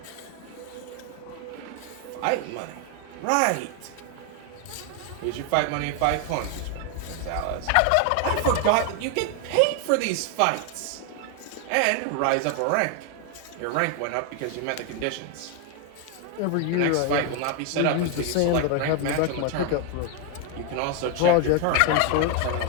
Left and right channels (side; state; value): both; different; correlation 0.01